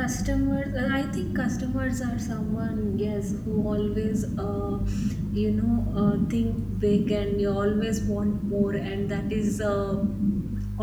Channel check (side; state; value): both; identical; correlation 1.00